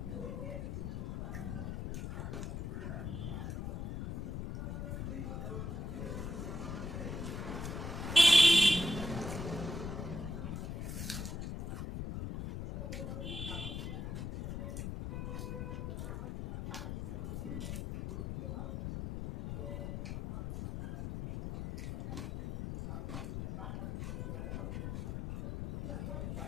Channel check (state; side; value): noise; left; rumble, 4 dB below the sound